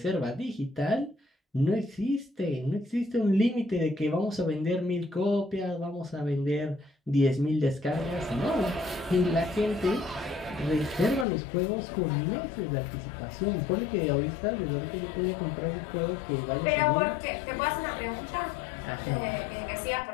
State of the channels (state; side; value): drops out; right; at 11.2 s